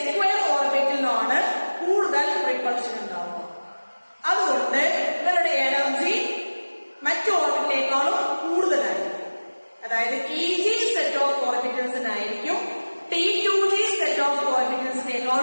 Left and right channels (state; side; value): inverted; both; correlation -1.00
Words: ഓർബിറ്റലിനുമാണ് കൂടുതൽ റിപ്പൾഷൻ ഉണ്ടാവുക. അതുകൊണ്ട് ഇവരുടെ എനർജി മറ്റു ഓർബിറ്റിനേക്കാളും കൂടുതലായിരിക്കും. അതായത് EG സെറ്റ് ഓഫ് ഓർബിറ്റൽസിനായിരിക്കും T2g സെറ്റ് ഓഫ്